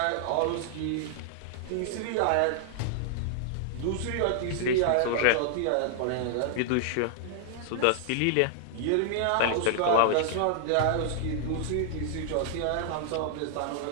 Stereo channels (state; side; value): different; both; correlation -0.01